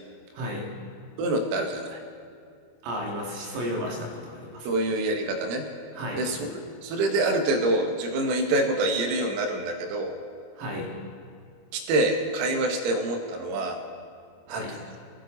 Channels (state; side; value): late; left; 25 ms